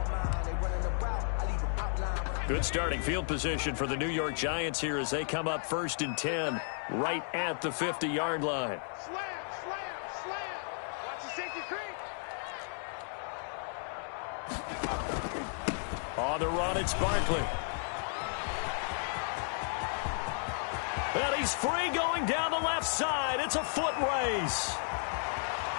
Good starting field position for the New York Giants here as they come up 1st and 10 right at the 50-yard line. Slam, slam, slam. Watch the safety creep. On the run, it's Barkley. And he's free going down the left side. It's a foot race.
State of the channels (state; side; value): silent; right; 55 dB below the other